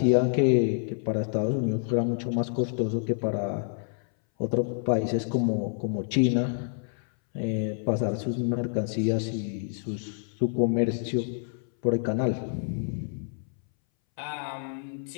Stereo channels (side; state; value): right; silent; 59 dB below the other